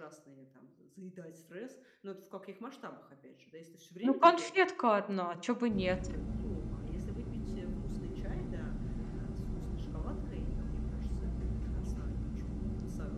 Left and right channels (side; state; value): both; identical; correlation 1.00